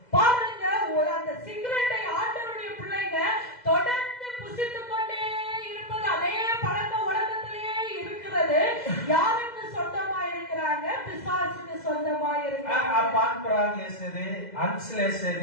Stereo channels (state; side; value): late; right; 2.0 ms